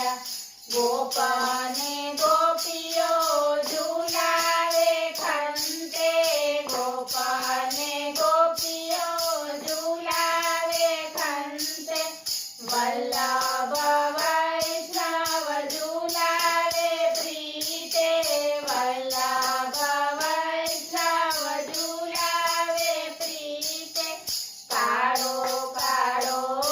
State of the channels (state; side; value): identical; both; correlation 1.00